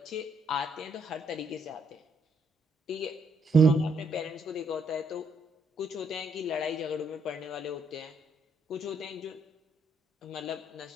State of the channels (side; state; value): both; normal; correlation 0.72